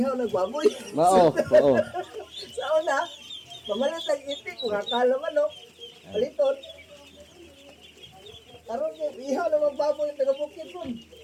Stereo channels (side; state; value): both; identical; correlation 1.00